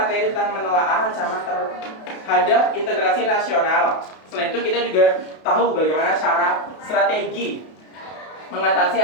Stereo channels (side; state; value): right; late; 32 ms